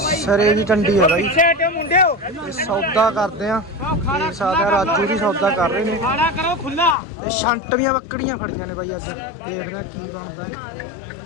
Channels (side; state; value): right; drops out; at 7.0 s